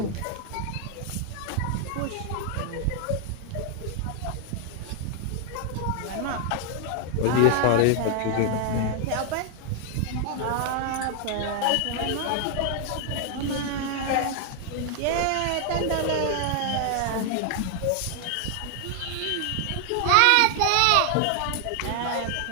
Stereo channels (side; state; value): both; different; correlation 0.00